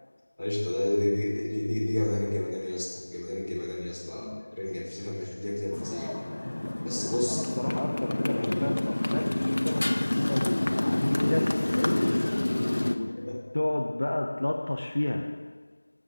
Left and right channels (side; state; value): both; inverted; correlation -1.00